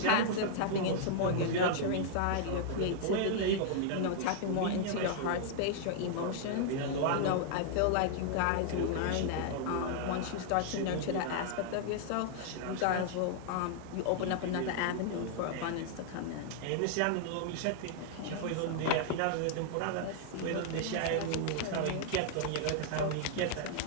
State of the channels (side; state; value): both; different; correlation -0.01